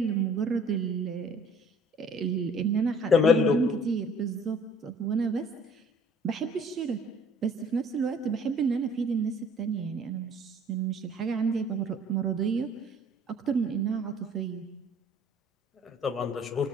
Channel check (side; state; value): both; normal; correlation 0.54